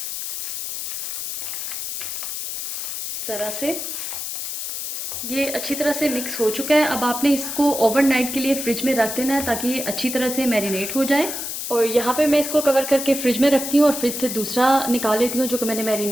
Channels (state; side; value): noise; left; hiss, 5 dB below the sound